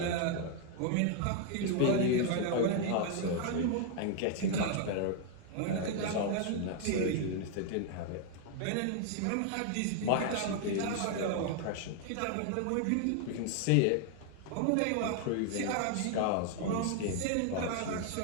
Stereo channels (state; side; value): different; both; correlation 0.00